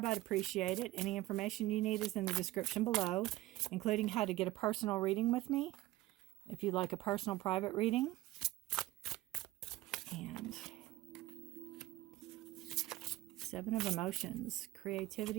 I'd appreciate it. Any information you need is in the description below, including how to get a personal reading with me, if you'd like a personal private reading. And 7 of Emotions,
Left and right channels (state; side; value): quieter; left; 17.2 dB